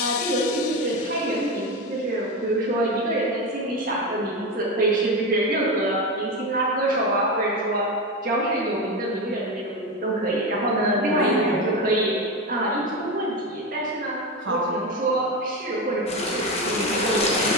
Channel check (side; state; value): both; normal; correlation 0.18